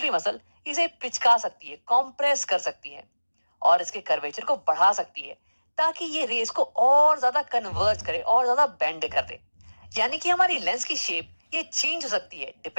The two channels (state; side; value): inverted; both; correlation -1.00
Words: मसल इसे पिचका सकती है, कॉम्प्रेस कर सकती है, और इसके कर्वेचर को बढ़ा सकती है, ताकि ये रेस को और ज्यादा कन्वर्ज करे और ज्यादा बेंड कर दे। यानी कि हमारी लेंस की शेप ये चेंज हो सकती है